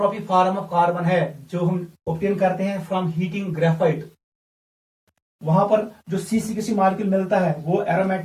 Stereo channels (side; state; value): both; identical; correlation 1.00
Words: फॉर्म ऑफ कार्बन है, जो हम ऑब्टेन करते हैं फ्रॉम हीटिंग ग्रेफाइट, वहां पर जो C60 मॉलिक्यूल मिलता है वो